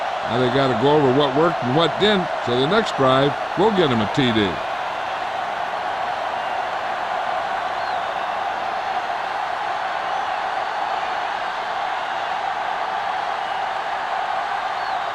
Now they got to go over what worked and what didn't, so the next drive will get him a TD.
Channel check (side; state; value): both; identical; correlation 1.00